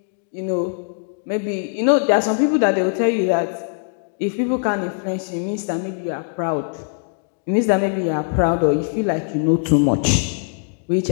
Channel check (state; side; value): silent; right; 65 dB below the other